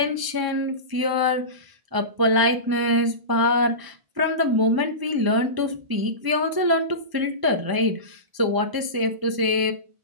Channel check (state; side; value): late; left; 1.0 ms